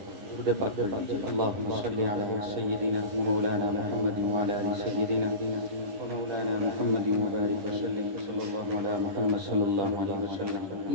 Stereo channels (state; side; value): late; left; 10 ms